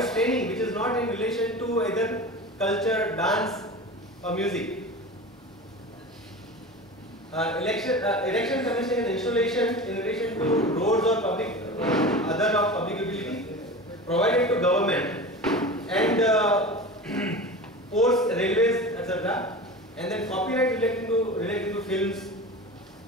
training which is not in relation to either culture, dance or music. Erection, commission and installation in relation to roads or public, other of public utility provided to government and ports, railways, etc. And then copyright relating to films,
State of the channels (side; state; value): both; normal; correlation 0.32